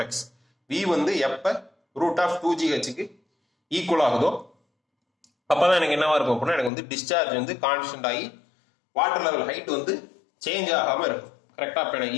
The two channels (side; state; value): right; drops out; at 6.7 s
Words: V வந்து எப்ப ரூட் ஆஃப் 2GHக்கு ஈக்குவல் ஆகுதோ அப்பதான் எனக்கு என்னவா இருக்கும் அப்படின்னா எனக்கு வந்து டிஸ்சார்ஜ் வந்து கான்ஸ்டன்ட் ஆகி வாட்டர் லெவல் ஹைட் வந்து சேஞ்ச் ஆகாம இருக்கும் கரெக்டா. இப்போ எனக்கு